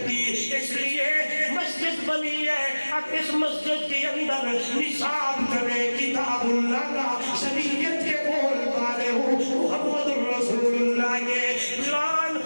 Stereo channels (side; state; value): both; inverted; correlation -1.00